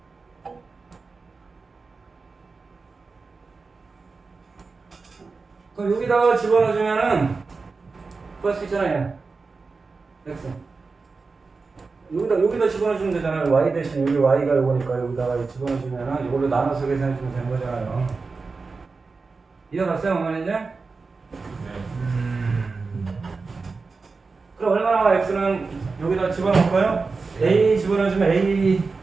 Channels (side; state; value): left; quieter; 4.3 dB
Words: 그럼 여기다가 집어넣어주면은 구할 수 있잖아요. X 여기다 집어넣어주면 되잖아요. Y 대신 여기 Y가 요거니까 여기다가 집어넣어주면은 이걸로 나눠서 계산해주면 되는 거잖아요. 이해갔어요? 어머니 이제? 그럼 얼마나 나와? X는 여기다 집어넣을까요? A 집어넣어주면 A분의